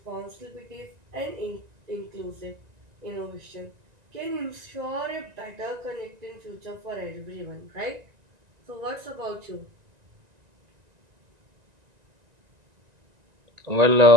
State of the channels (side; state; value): left; late; 1.9 ms